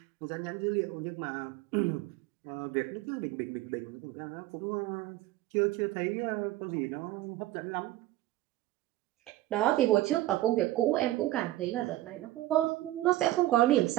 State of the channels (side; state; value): left; quieter; 16.1 dB